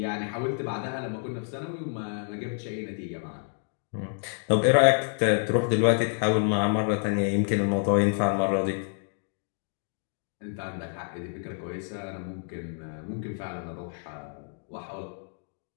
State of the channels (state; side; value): silent; right; 59 dB below the other